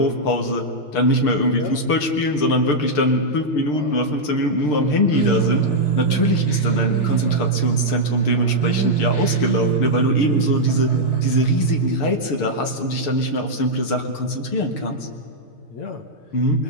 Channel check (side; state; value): right; late; 6.7 ms